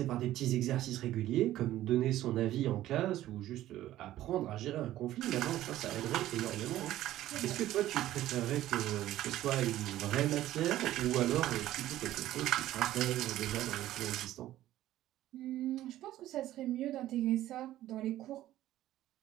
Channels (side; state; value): left; quieter; 14.1 dB